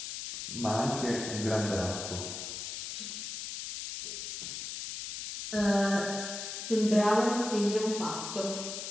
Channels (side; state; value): left; noise; hiss, 6 dB below the sound